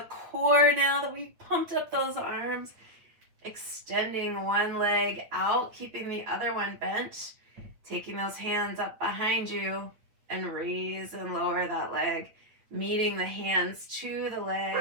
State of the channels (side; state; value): left; late; 9.1 ms